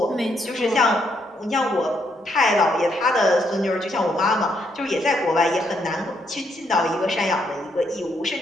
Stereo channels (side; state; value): both; normal; correlation 0.75